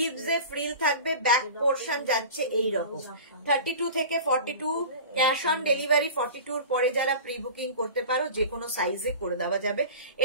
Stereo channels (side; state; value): both; inverted; correlation -0.36